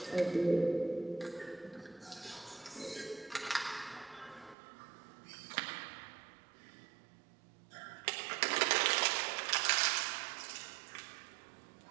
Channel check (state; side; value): drops out; left; at 4.5 s